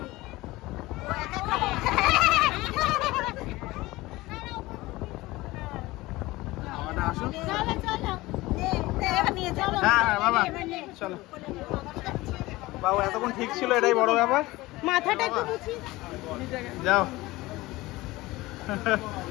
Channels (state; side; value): quieter; right; 19.6 dB